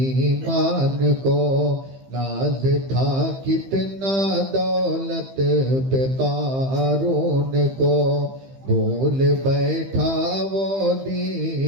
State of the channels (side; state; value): left; late; 15 ms